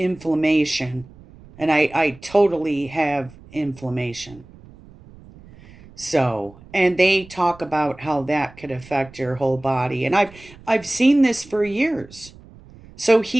and I totally have inflammation. So, and they talk about how that could affect your whole body, and I've seen this for years. So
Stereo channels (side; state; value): right; noise; rumble, 22 dB below the sound